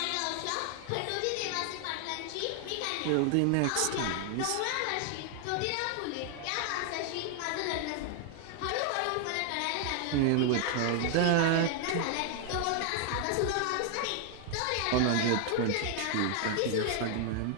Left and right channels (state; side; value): different; both; correlation 0.00